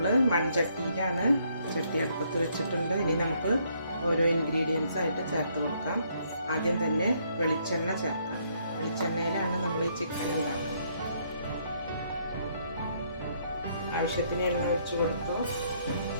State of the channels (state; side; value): inverted; both; correlation -0.69